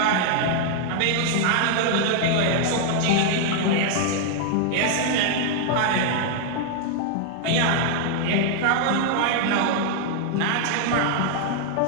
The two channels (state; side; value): different; both; correlation 0.00